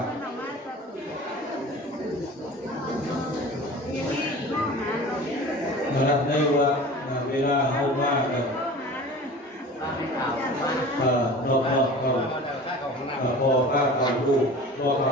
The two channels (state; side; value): normal; both; correlation 0.39